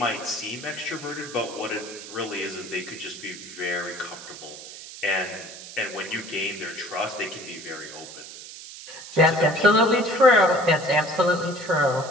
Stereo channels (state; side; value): noise; right; hiss, 14 dB below the sound